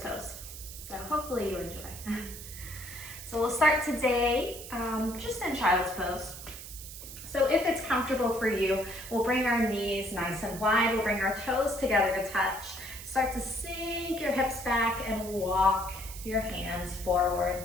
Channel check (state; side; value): noise; right; hiss, 12 dB below the sound